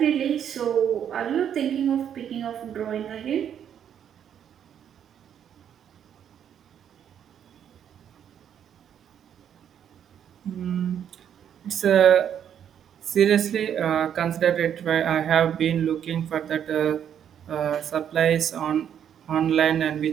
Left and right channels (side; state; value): left; quieter; 9.1 dB